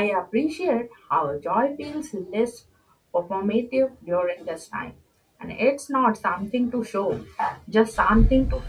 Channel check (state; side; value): identical; both; correlation 1.00